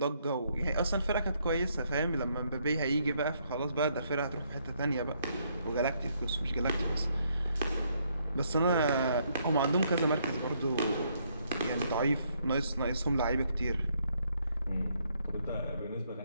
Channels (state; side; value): inverted; both; correlation -0.72